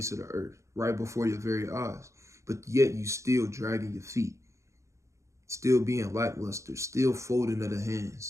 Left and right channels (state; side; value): late; left; 0.14 ms